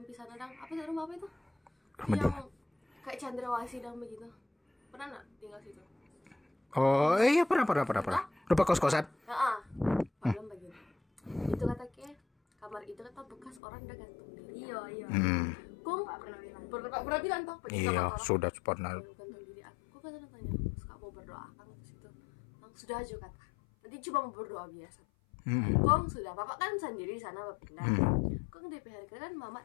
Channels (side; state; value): right; drops out; at 13.6 s